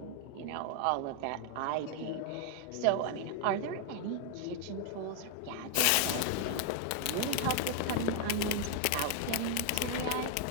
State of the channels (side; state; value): both; different; correlation 0.00